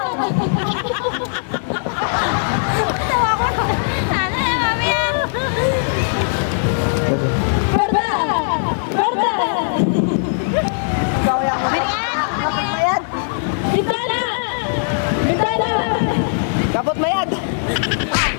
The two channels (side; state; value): right; silent; digital silence